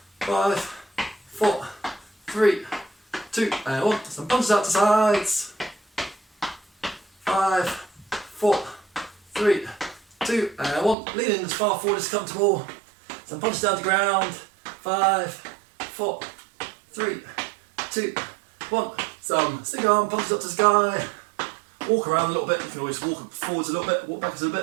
5, 4, 3, 2, and 1. Some punches out to sides. 5, 4, 3, 2, and 1. Lean in as far forward as comfortable. Some punches down to ground. 5, 4, 3, 2, 1. Some single arm punches up to the sky. Walk around a little bit. You can always walk forwards a little bit, walk backwards a little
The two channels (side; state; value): left; drops out; at 11.0 s